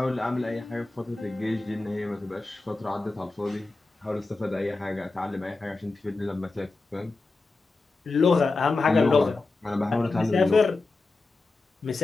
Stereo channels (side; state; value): right; quieter; 3.5 dB